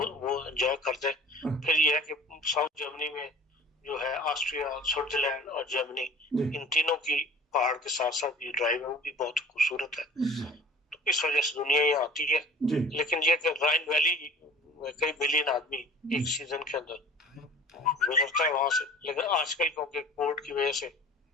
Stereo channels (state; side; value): normal; both; correlation 0.45